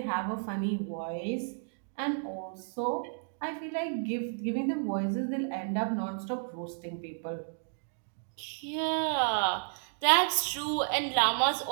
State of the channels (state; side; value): silent; left; digital silence